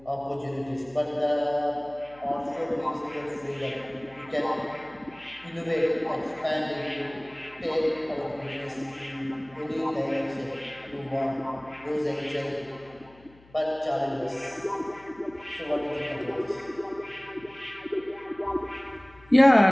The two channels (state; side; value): noise; left; hum, 26 dB below the sound